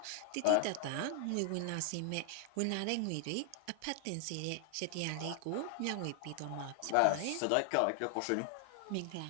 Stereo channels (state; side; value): different; both; correlation 0.00